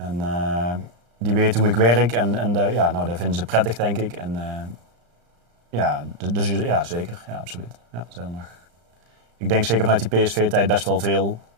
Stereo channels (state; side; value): late; left; 35 ms